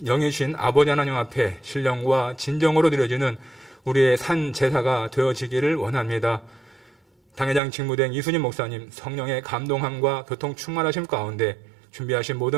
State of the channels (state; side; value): drops out; left; at 7.6 s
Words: 영이신 아버지 하나님 앞에 신령과 진정으로 드려지는 우리의 산 제사가 되어지기를 원합니다. 당회장 직무대행 이순임 목사님 성령의 감동함과 교통 충만하심 가운데 준비하신